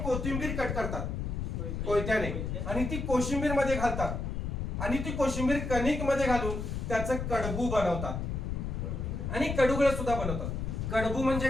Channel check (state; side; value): noise; left; rumble, 3 dB below the sound